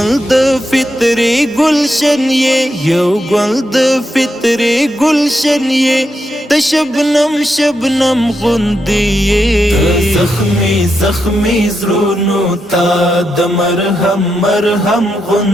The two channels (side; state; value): both; normal; correlation 0.84